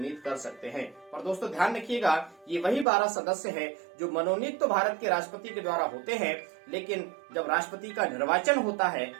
कर सकते हैं। पर दोस्तों ध्यान रखिएगा, ये वही 12 सदस्य हैं जो मनोनीत तो भारत के राष्ट्रपति के द्वारा होते हैं, लेकिन जब राष्ट्रपति का निर्वाचन होता है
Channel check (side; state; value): left; drops out; at 2.9 s